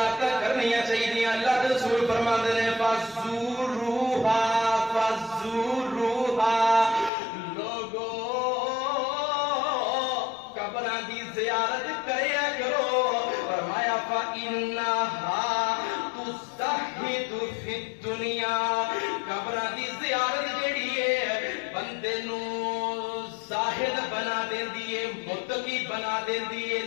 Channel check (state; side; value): drops out; right; at 7.1 s